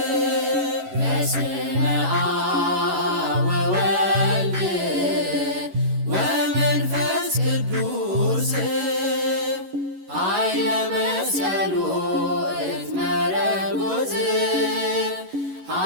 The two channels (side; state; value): left; late; 11 ms